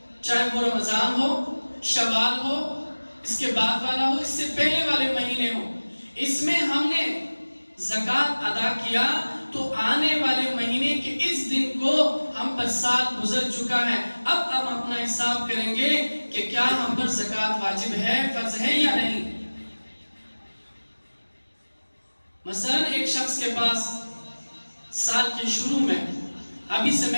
چاہے وہ رمضان ہو، شوال ہو، اس کے بعد والا ہو، اس سے پہلے والے مہینے ہو، اس میں ہم نے زکوٰۃ ادا کیا تو آنے والے مہینے کے اس دن کو ہم پر سال گزر چکا ہے۔ اب ہم اپنا حساب کریں گے کہ کیا ہم پر زکوٰۃ واجب ہے، فرض ہے یا نہیں۔ مثلا ایک شخص کے پاس سال کے شروع میں، ابھی سے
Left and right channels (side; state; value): both; inverted; correlation -1.00